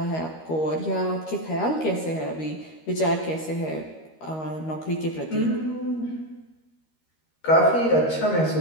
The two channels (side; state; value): right; late; 13 ms